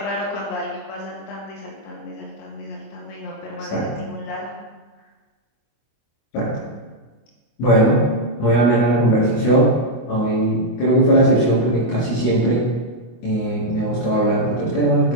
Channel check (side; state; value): right; late; 25 ms